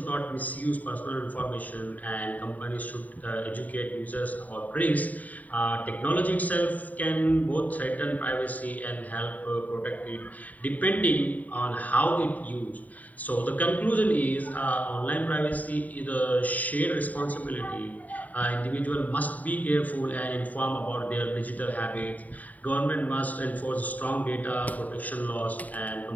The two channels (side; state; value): right; late; 0.074 ms